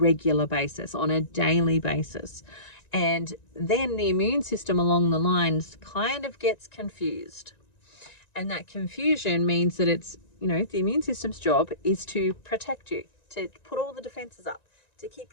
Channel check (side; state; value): right; late; 1.9 ms